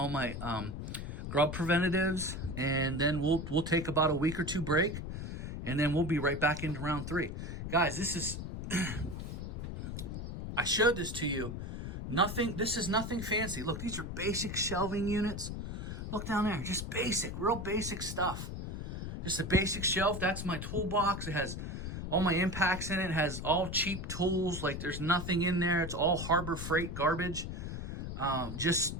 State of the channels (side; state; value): left; noise; rumble, 6 dB below the sound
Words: my grub preventatives. And then we'll take about a week or 2 break. And then we'll be right back into round 3. Guys, this is, I showed this to you. This is nothing fancy. Look, these are basic shelving units. Look down there, just basic, real basic stuff. Just a basic shelf. That's my toolbox. It has all my impacts in it. It has all cheap tools. Like there's nothing in there. It's all Harbor Freight garbage.